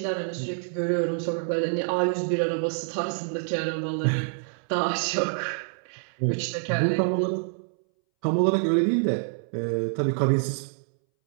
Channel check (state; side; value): silent; left; 60 dB below the other